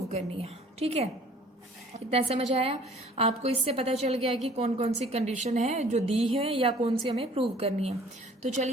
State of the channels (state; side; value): normal; both; correlation 0.53